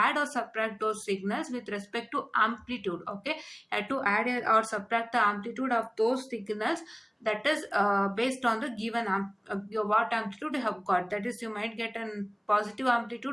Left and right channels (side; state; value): both; identical; correlation 1.00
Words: or subtract those signals with respect to amplitude. Okay, you have to add or subtract the amplitude of those signals, that is based on the given what amplitude you have got. That is, you might get a positive